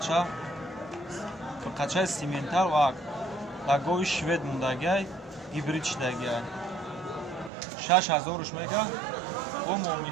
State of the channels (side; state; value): left; drops out; at 7.5 s